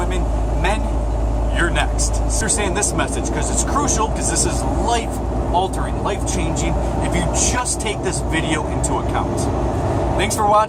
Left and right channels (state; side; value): identical; both; correlation 1.00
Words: Men, you're next. Understand this message, because it's crucial, because this is life-altering, life-changing, if you just take this video into account. Thanks for